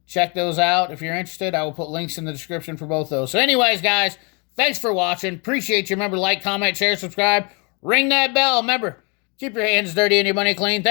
Check those out if you're interested. I will put links in the description for both those. So anyways, guys, thanks for watching. Appreciate you. Remember, like, comment, share, subscribe. Ring that bell. Remember, keep your hands dirty and your money clean.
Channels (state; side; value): quieter; right; 32.5 dB